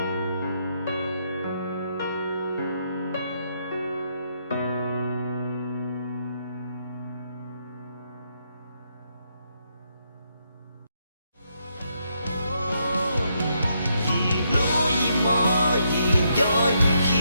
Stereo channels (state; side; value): inverted; both; correlation -0.77